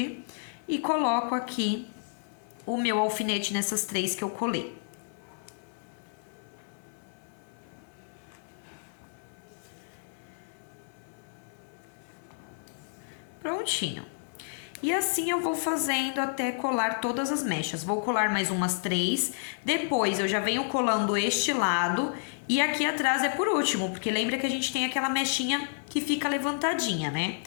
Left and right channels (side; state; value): right; silent; 58 dB below the other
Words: E coloco aqui o meu alfinete nessas 3 que eu colei. Prontinho. E assim eu vou fazendo até colar todas as mechas. Vou colar mais umas 3. Depois eu já venho colando este lado. E aqui atrás é por último, porque lembra que a gente tem aquela mechinha que fica levantadinha, né?